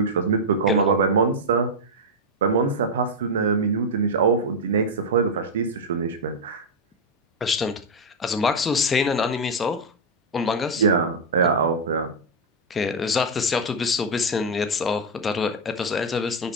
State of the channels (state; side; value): normal; both; correlation 0.00